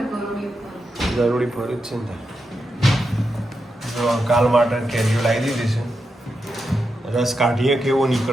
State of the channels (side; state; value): both; normal; correlation 0.87